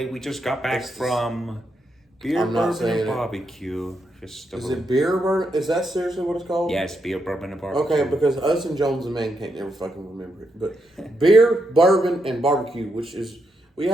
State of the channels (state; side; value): normal; both; correlation 0.81